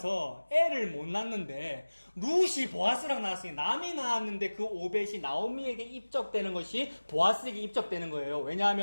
애를 못 낳는데 룻이 보아스랑 낳았으니 남이 낳았는데 그 오벳이 나오미에게 입적되는 것이 보아스에게 입적되는 거예요.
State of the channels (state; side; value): inverted; both; correlation -1.00